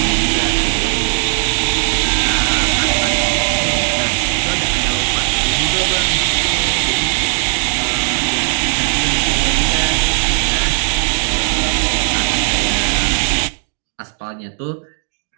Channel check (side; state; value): left; silent; digital silence